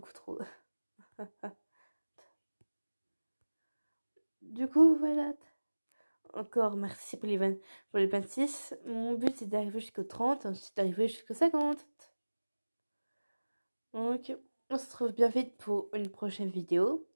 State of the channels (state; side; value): inverted; both; correlation -1.00